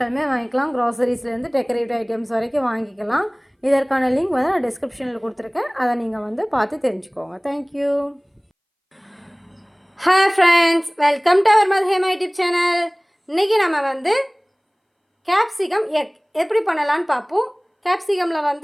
வாங்கிக்கலாம். க்ராசரிஸ்லேருந்து டெக்கரேட்டிவ் ஐட்டம்ஸ் வரைக்கும் வாங்கிக்கலாம். இதற்கான லிங்க் வந்து நான் டிஸ்கிரிப்ஷனில் கொடுத்துருக்கேன். அதை நீங்கள் வந்து பார்த்து தெரிஞ்சுக்கோங்க. Thank you. Hi friends, welcome to our Madhuhema YouTube channel. இன்றைக்கி நம்ம வந்து கேப்சிகம் எக் எப்படி பண்ணலான்னு பார்ப்போம். கேப்சிகமில்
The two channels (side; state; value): both; identical; correlation 1.00